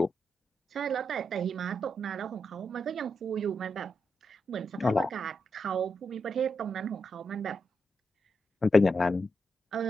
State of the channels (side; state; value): both; normal; correlation 0.84